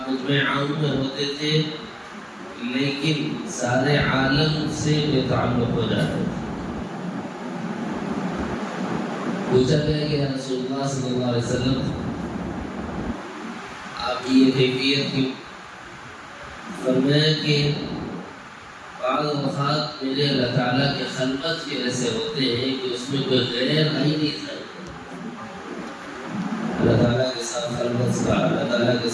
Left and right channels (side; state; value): both; identical; correlation 1.00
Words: خطبہ عام میں ہوتے تھے لیکن سارے عالم سے بے تعلق ہو جاتے تھے۔ پوچھا گیا کہ یا رسول اللہ صلی اللہ علیہ وسلم آپ کی یہ کیفیت کیوں؟ فرمایا کہ بعض اوقات میرے اللہ تعالیٰ کے خلوت کے ایسے ہوتے ہیں کہ اس میں کوئی غیر آئی نہیں تھا۔ اللہ تعالیٰ کے ساتھ خلوت کا، اللہ تعالیٰ کے